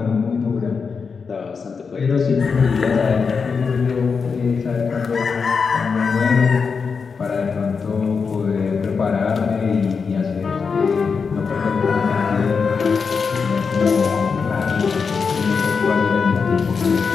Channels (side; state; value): right; quieter; 5.4 dB